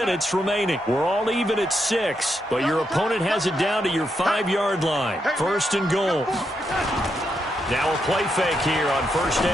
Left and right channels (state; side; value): normal; both; correlation 0.82